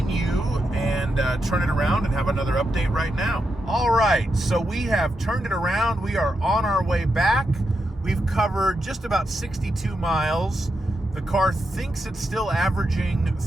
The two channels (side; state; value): both; normal; correlation 0.85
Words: and turn it around and have another update right now. All right, so we have turned it around. We are on our way back. We've covered just about 62 miles. The car thinks it's still averaging